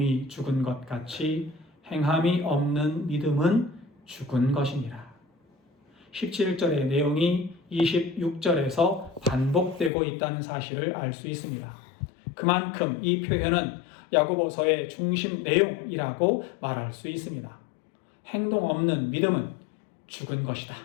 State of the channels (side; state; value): right; drops out; at 9.9 s